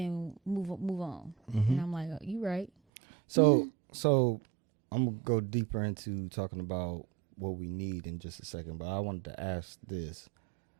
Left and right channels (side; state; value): left; drops out; at 2.7 s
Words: move on. And I'm like, oh, you right. So I'm gonna go deeper into talking about what we need in just a second, but I wanted to ask this: